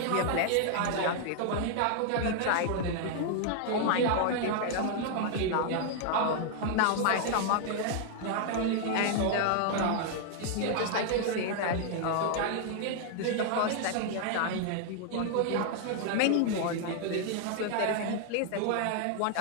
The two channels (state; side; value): different; both; correlation 0.00